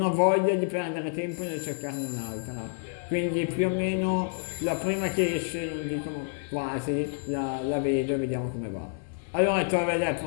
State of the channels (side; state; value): right; silent; digital silence